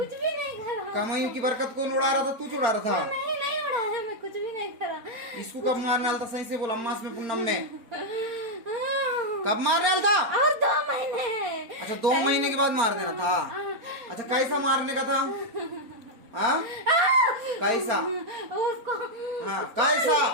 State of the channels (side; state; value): left; late; 4.4 ms